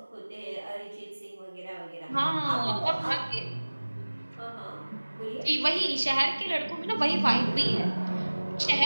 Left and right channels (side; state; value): both; inverted; correlation -1.00